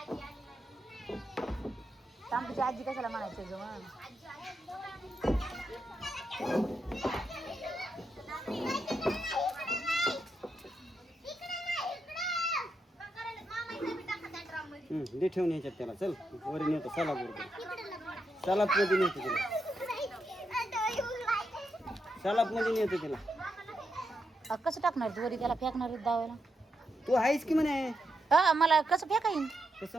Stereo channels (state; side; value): normal; both; correlation 0.83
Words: तांबीची आजी कशाला म्हणायचं ग मग दे ठेवून ह्याच्यात त्याला चल वरी नेतो सलाप सलाप मध्ये नेतो तिला सलाप मध्ये नेतो तिला कसं टाकणार तू वरी त्याला फेकणार दावायला तू आहेस की म्हणे मला कसं फेका येईन कसं